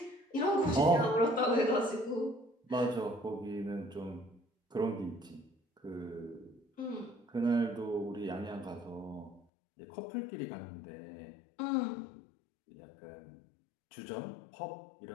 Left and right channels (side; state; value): right; drops out; at 9.5 s